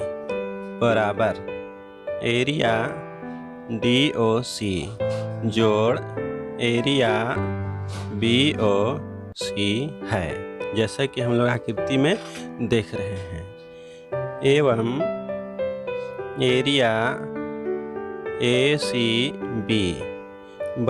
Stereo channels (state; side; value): identical; both; correlation 1.00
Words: बराबर एरिया DOC जोड़ एरिया BOC है, जैसा कि हम लोग आकृति में देख रहे हैं। एवं एरिया ACB